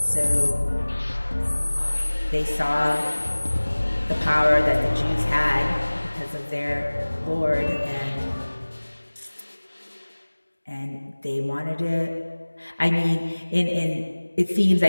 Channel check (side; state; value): both; inverted; correlation -1.00